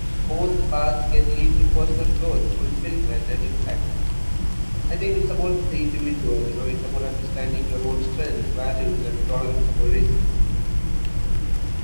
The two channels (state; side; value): inverted; both; correlation -1.00